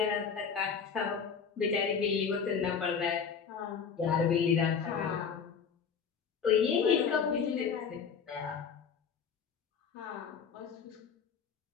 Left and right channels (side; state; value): right; quieter; 6.4 dB